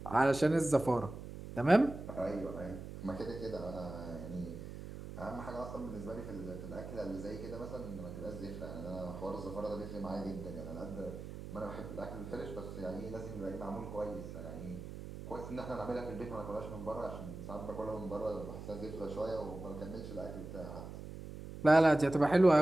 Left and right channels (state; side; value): noise; right; hum, 10 dB below the sound